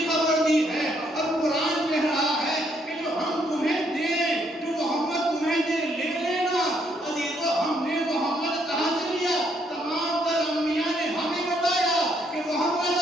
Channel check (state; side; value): normal; both; correlation 0.71